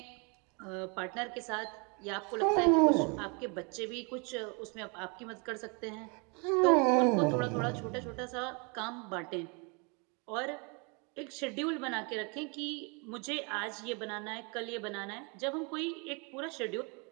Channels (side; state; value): left; quieter; 32.7 dB